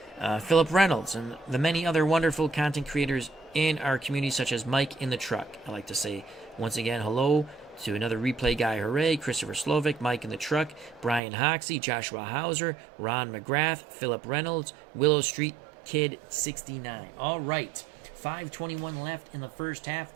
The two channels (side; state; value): left; drops out; at 11.2 s